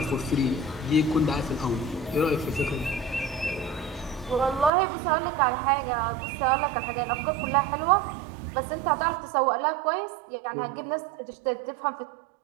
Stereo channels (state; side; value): drops out; left; at 4.7 s